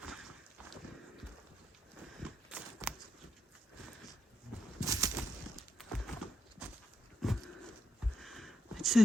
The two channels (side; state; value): both; normal; correlation 0.81